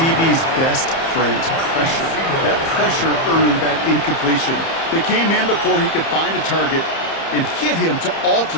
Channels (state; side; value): late; right; 30 ms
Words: best friend, pressure. That pressure earned that incompletion. They came in before he could find a target and hit him to